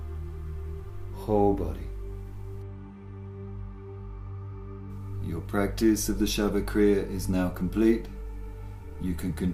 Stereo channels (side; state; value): both; identical; correlation 1.00